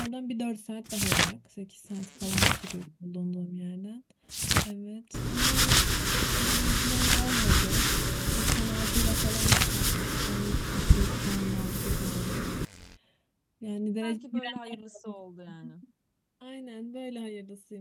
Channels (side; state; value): both; identical; correlation 1.00